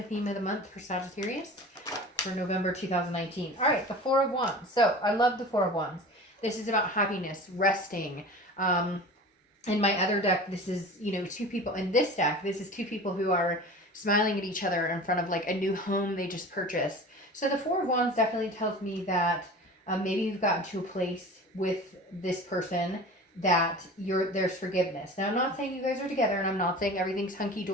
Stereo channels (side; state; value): both; normal; correlation 0.37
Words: theme of the month for Sagittarius for November 2019? All right, the Four of Wands. So I love the Four of Wands. This is about happiness, resting. In my other deck, this is, two people. In this deck, this is two people who are smiling at each other in front of like a new home they just purchased. So the Four of Wands definitely tells me that maybe you've gotten to a place with this person that there's forgiveness. Now, I'm not saying you guys are together, and I'm not saying everything's